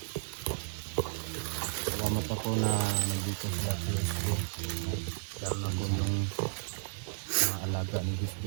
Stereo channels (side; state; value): left; silent; 56 dB below the other